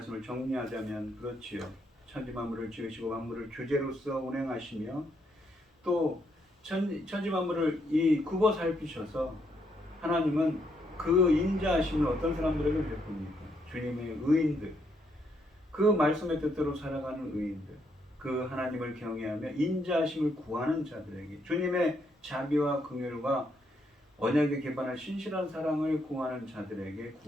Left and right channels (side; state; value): both; normal; correlation 0.75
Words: 정리하자면 그렇지요. 천지 만물을 지으시고 만물을 주제로서 운행하시며 또 천지 만물을 굽어 살피셔서 하나님은 그 인자하심을 어떤 사람들에게 베풉니까? 주님의 의인들, 그 말씀의 뜻대로 살아가는 의인들, 그 하나님을 경외하며 인자하심을 구하는 자들에게 주님의 자비와 긍휼과 언약에 기반한 신실한 사랑을 구하는 자들에게